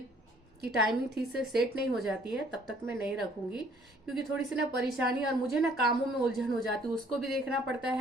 की टाइमिंग ठीक से सेट नहीं हो जाती है तब तक मैं नहीं रखूंगी, क्योंकि थोड़ी सी ना परेशानी, और मुझे ना कामों में उलझन हो जाती है। उसको भी देखना पड़ता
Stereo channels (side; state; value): both; normal; correlation 0.60